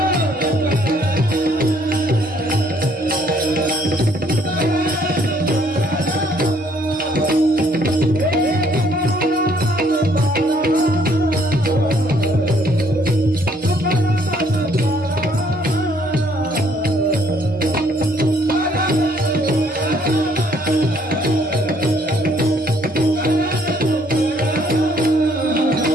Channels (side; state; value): both; normal; correlation 0.64